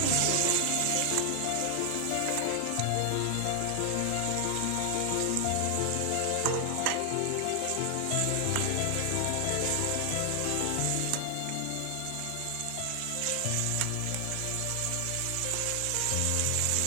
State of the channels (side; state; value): both; different; correlation 0.00